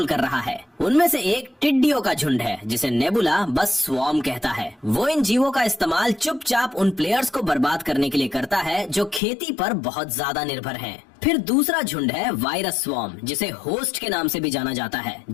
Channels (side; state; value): right; drops out; at 9.2 s